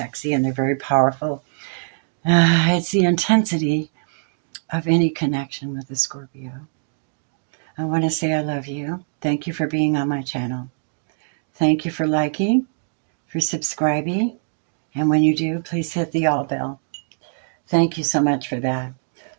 and they're very powerful. It's the intensity of any connection with a Scorpio. I want to say I love you. Thank you for being on my channel. Thank you for liking, for subscribing, and when you do, please hit the all bell. Thank you so much for that.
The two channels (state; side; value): silent; left; digital silence